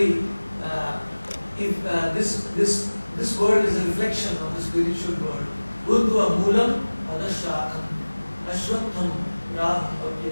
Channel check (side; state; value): both; inverted; correlation -1.00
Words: if this world is a reflection of the spiritual world, Buddha Moolam Adashakam Ashwatham Raham.